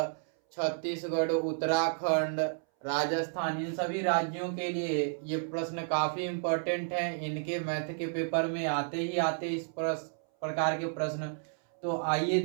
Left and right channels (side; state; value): left; silent; 57 dB below the other